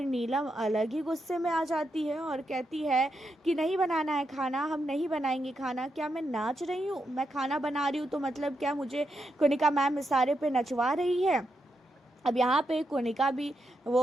नीलम अलग ही गुस्से में आ जाती है और कहती है कि नहीं बनाना है खाना, हम नहीं बनाएंगे खाना। क्या मैं नाच रही हूँ? मैं खाना बना रही हूँ तो मतलब क्या मुझे कोनिका मैम इशारे पे नचवा रही है? अब यहाँ पे कोनिका भी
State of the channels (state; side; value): normal; both; correlation 0.84